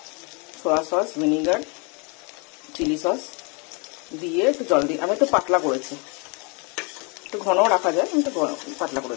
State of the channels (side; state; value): right; quieter; 32.7 dB